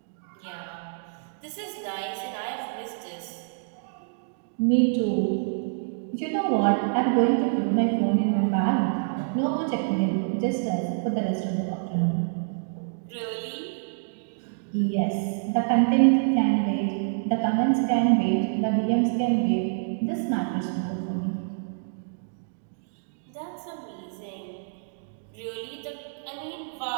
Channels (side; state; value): left; silent; digital silence